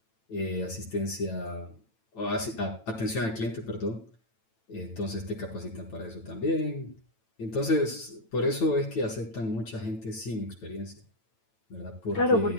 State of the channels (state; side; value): late; right; 9.0 ms